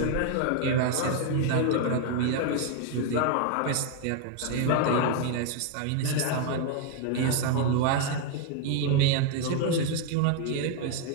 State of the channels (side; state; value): both; different; correlation 0.00